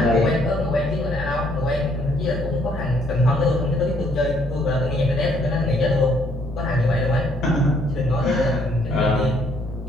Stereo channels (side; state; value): both; normal; correlation 0.66